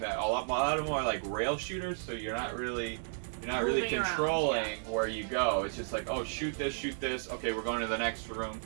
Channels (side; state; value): left; silent; digital silence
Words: a lot of them are like rail shooters, so you're not really controlling where you go. It's just like, oh, shoot this, okay, we're going to the next room.